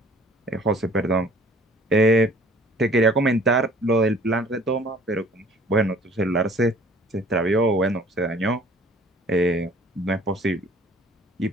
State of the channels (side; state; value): both; normal; correlation 0.53